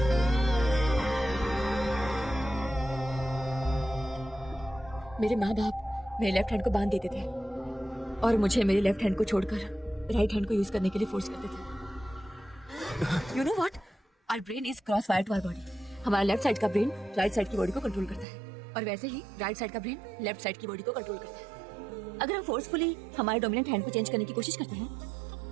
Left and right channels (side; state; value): left; drops out; at 18.2 s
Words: मेरे माँ बाप मेरे लेफ्ट हैंड को बांध देते थे और मुझे मेरे लेफ्ट हैंड को छोड़कर राइट हैंड को यूज करने के लिए फोर्स करते थे। You know what? Our brain is cross wire to our body. हमारा लेफ्ट साइड का ब्रेन राइट साइड की बॉडी को कंट्रोल करता है, और वैसे ही राइट साइड का ब्रेन लेफ्ट साइड की बॉडी को कंट्रोल करता है। अगर हम फोर्सफुली हमारे डोमिनेंट हैंड को चेंज करने की कोशिश करते हैं